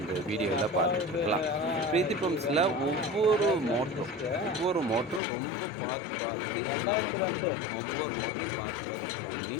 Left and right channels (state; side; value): drops out; right; at 5.2 s